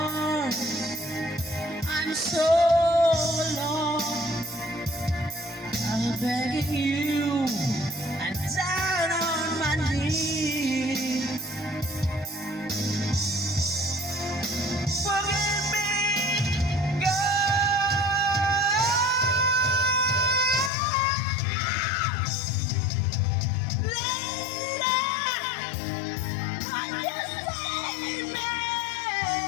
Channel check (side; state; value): right; drops out; at 20.7 s